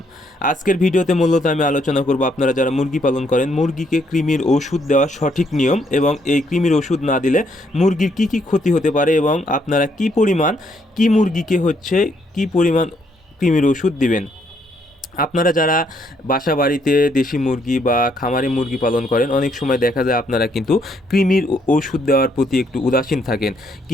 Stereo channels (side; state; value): both; normal; correlation 0.71